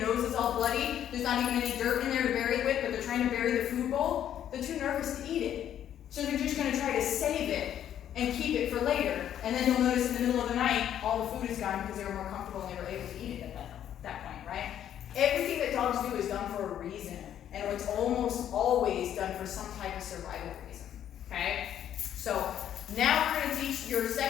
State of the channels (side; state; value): right; quieter; 10.4 dB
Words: nose is all bloody. There's not even any dirt in there to bury it with, but they're trying to bury the food bowl. They're too nervous to eat it. So they're just going to try to save it and keep it for later. And then you'll notice in the middle of the night, all the food is gone because they were more comfortable and they were able to eat it at that point, right? Everything that dogs do is done for a reason. And it's almost always done for some type of survival reason, okay? So now we're going to teach your